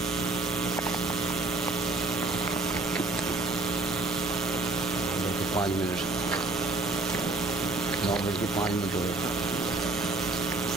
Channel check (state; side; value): quieter; left; 3.2 dB